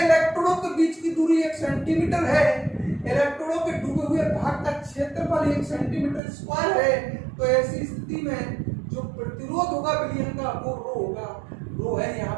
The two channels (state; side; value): drops out; left; at 6.2 s